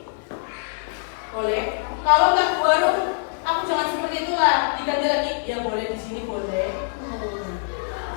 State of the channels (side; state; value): right; silent; 63 dB below the other